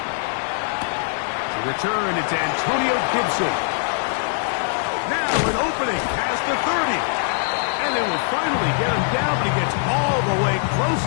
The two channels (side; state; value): right; silent; digital silence